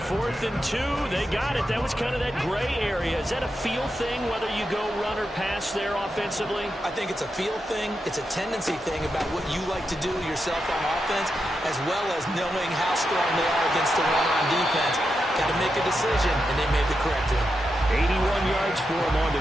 4th and 2, they got it. That was kind of that gray area. Is that a feel thing, whether you go run or pass there offensively? I think it's a feel thing. It's a tendency thing about what you like to do yourself on offense, as well as knowing how strong they are against the run on defense. Got to make a decision, and they made the correct one. 81 yards for him on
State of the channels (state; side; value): normal; both; correlation 0.87